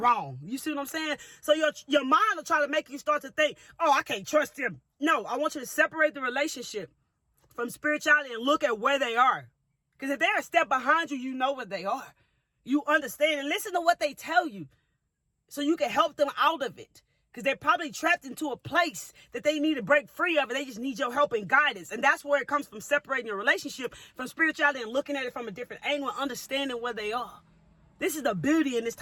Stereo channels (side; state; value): both; identical; correlation 1.00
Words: You see what I'm saying? So your mind will try to make you start to think, oh, I can't trust them. No, I want you to separate the relationship from spirituality and look at where they are. Because if they're a step behind you, you know where they are. You understand and listen to what they tell you so you can help them out of it. Because they're probably trapped into a place that they need to break free of, and they just need your help and guidance. And that's where it comes from, separating your relationship from spirituality and looking at it from a different angle and understanding where they are. This is the beauty in this